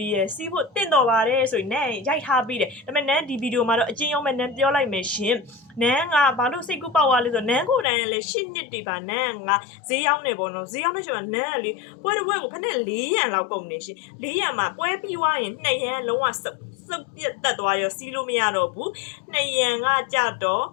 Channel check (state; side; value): drops out; right; at 7.9 s